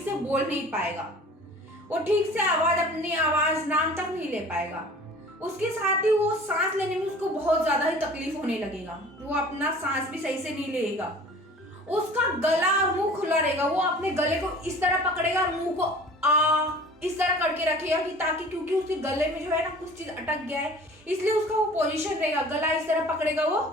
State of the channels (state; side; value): normal; both; correlation 0.45